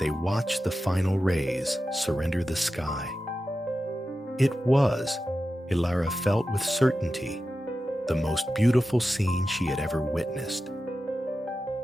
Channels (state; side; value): normal; both; correlation 0.92